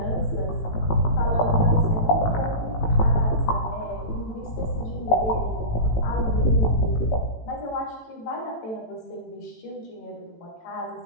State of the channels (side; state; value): right; late; 18 ms